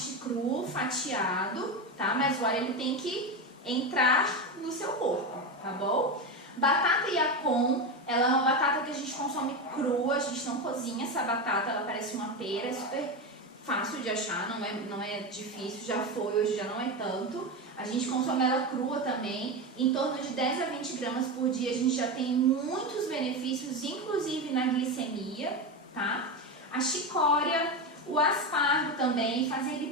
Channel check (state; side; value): normal; both; correlation 0.17